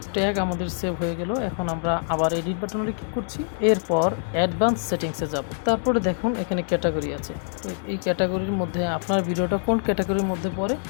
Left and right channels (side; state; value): right; silent; 62 dB below the other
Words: ট্যাগ আমাদের সেভ হয়ে গেল। এখন আমরা আবার এডিট বাটনে ক্লিক করছি। এরপর অ্যাডভান্স সেটিংসে যাব। তারপরে দেখুন এখানে ক্যাটাগরি আছে। তো এই ক্যাটাগরির মধ্যে আপনার ভিডিওটা কোন ক্যাটাগরির মধ্যে পড়ে